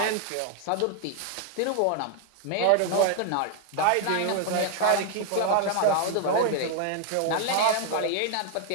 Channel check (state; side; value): different; both; correlation 0.00